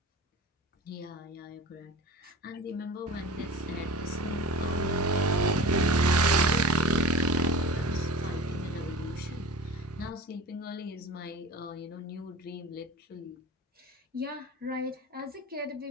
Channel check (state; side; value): normal; both; correlation 0.35